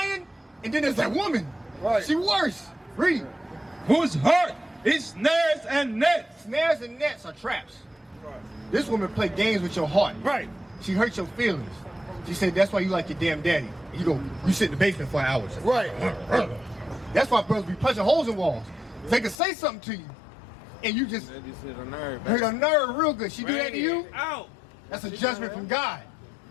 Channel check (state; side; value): drops out; right; at 19.4 s